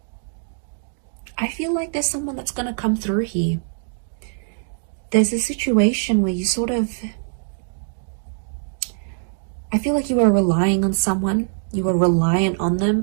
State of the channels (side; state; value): left; silent; digital silence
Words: I feel like there's someone that's going to come through here. There's a situation where you sort of I feel like you were relying on someone, you were reliant on